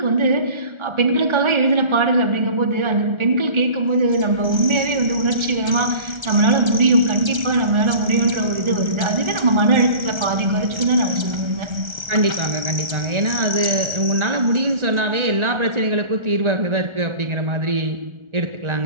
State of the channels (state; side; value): late; left; 1.4 ms